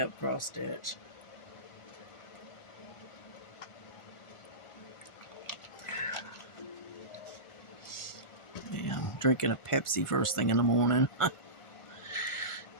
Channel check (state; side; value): late; right; 1.4 ms